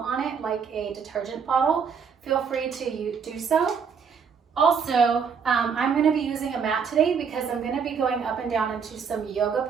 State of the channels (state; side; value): quieter; left; 6.4 dB